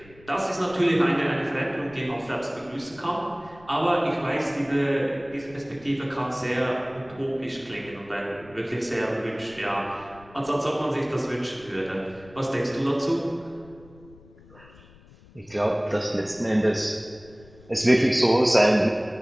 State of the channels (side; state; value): left; noise; rumble, 24 dB below the sound